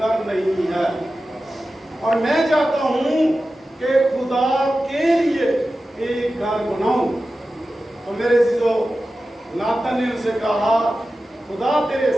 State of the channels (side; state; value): both; normal; correlation 0.94